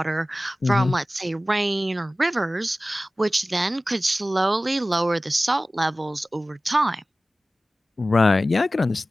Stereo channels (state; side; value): normal; both; correlation 0.96